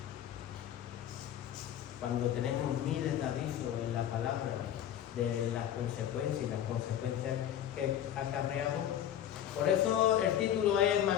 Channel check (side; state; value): right; quieter; 10.7 dB